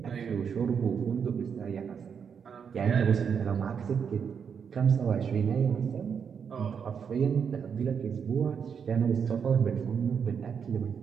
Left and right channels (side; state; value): left; quieter; 6.9 dB